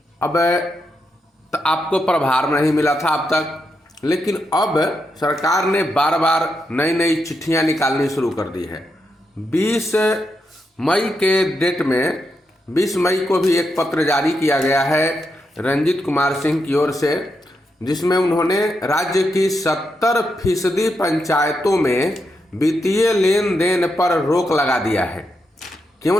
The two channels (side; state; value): both; normal; correlation 0.84